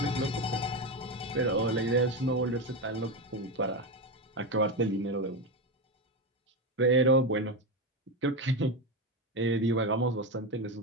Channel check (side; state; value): both; normal; correlation 0.14